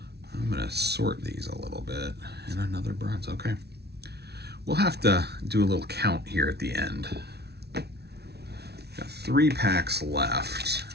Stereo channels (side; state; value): left; late; 0.48 ms